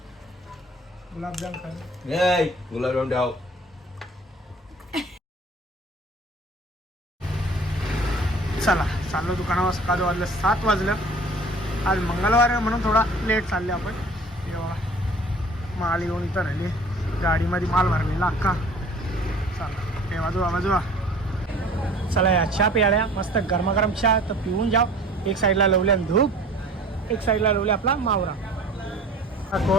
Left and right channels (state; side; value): normal; both; correlation 0.47